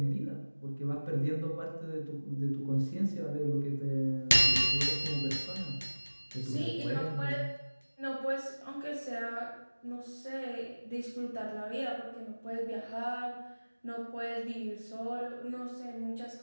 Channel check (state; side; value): inverted; both; correlation -1.00